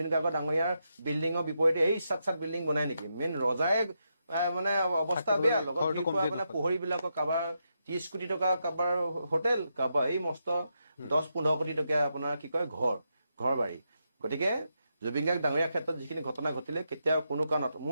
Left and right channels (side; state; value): both; inverted; correlation -0.83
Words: গাৰ্গ ডাঙৰীয়াৰ বিল্ডিঙৰ বিপৰীতে এই চাত বিল্ডিং বনাই নেকি? মেইন ৰজাই মানে অৱস্থা বেয়া। লগত মানে পোহৰীবিলাকৰ কাৰোবাৰ 30 কোটি টকা, কাৰোবাৰ হোটেল, কাৰোবাৰ এই মস্ত 10-15 কোটি টকীয়া আপোনাৰ কি কয় ঘৰ বাৰী। গতিকে জুবিন গাৰ্গ ডাঙৰীয়াৰ ক্ষেত্ৰত যিখিনি ঘটনা ঘটিলে কেতিয়াও কোনো কাৰণত